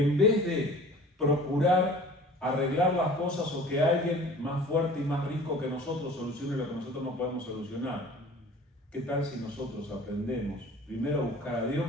vez de procurar arreglar las cosas o que alguien más fuerte y más rico que nosotros solucione lo que nosotros no podemos solucionar, ¿qué tal si nosotros aprendemos primero a buscar a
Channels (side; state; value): both; normal; correlation 0.45